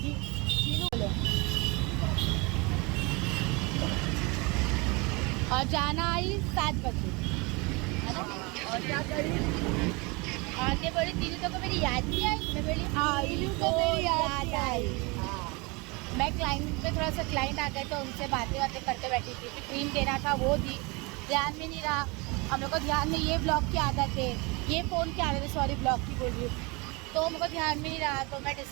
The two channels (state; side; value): quieter; left; 27.3 dB